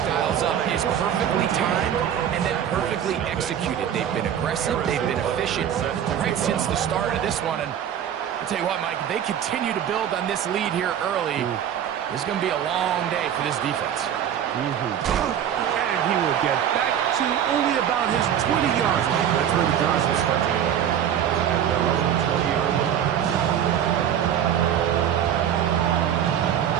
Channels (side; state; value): left; quieter; 9.6 dB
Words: dials up is perfectly timed and then perfectly executed. They've been aggressive, they've been efficient right since the start of this one. And I'll tell you what, Mike, if they continue to build on this lead here early, this is going to be a long day for this defense. And he will get back to only about his 20 yards. That's where the drive will start. At their own 20-yard line.